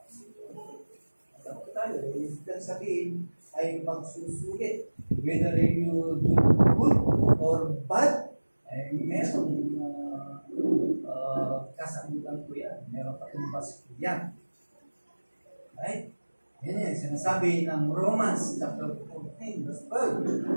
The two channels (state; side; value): inverted; both; correlation -1.00